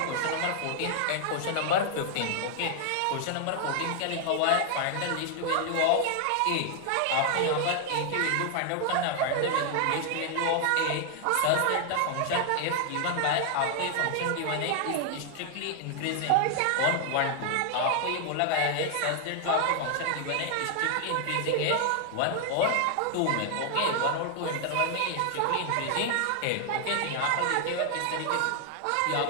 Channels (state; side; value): different; both; correlation 0.00